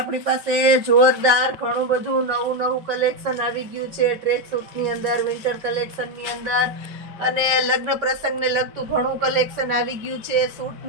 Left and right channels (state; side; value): late; left; 5.2 ms